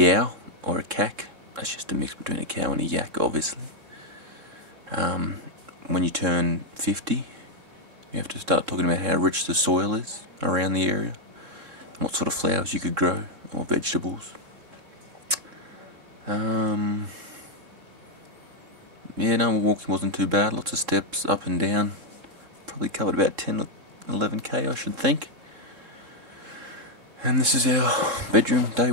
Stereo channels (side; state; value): left; late; 3.7 ms